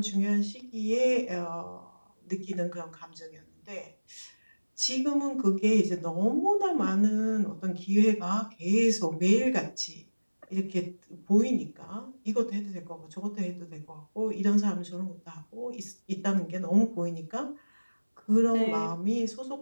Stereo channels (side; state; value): both; inverted; correlation -1.00